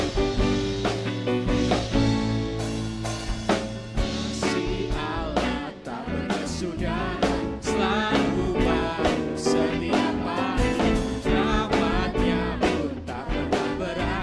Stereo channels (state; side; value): identical; both; correlation 1.00